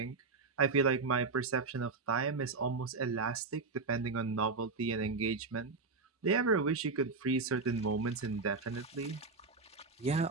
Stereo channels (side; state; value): left; quieter; 4.2 dB